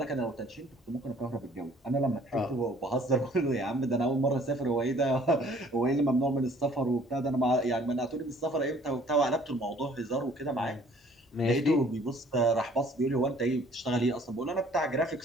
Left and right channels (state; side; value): normal; both; correlation 0.56